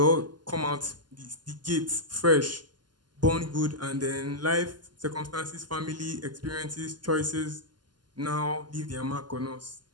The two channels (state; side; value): late; left; 0.71 ms